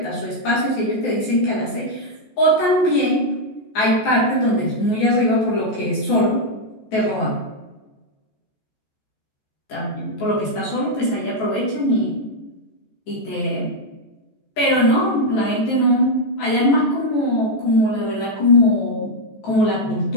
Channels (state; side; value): late; right; 14 ms